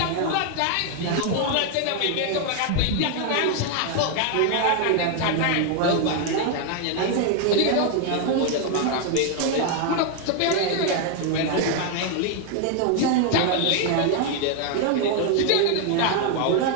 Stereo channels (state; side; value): different; both; correlation 0.01